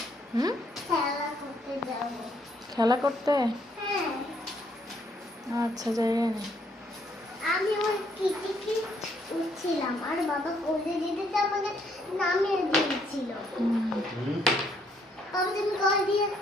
হুম, খেলা করতে? আচ্ছা, যাই না। আমি ওই কিটিকি উঠছিলাম আর বাবা কোলে যেতে আমাকে নামিয়ে দিয়েছিল। বাবা তুমি কল দিয়ে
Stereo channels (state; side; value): normal; both; correlation 0.70